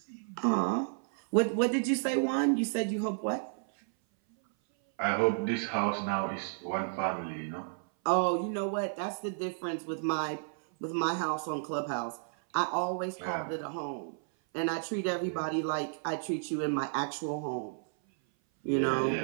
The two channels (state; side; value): silent; left; 56 dB below the other